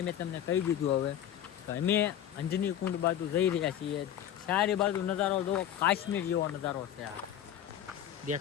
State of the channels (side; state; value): right; quieter; 10.7 dB